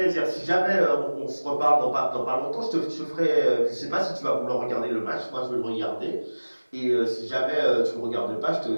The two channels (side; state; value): both; inverted; correlation -1.00